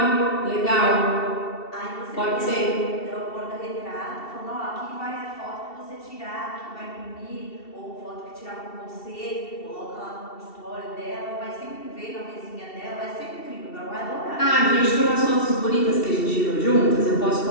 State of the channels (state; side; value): late; right; 2.7 ms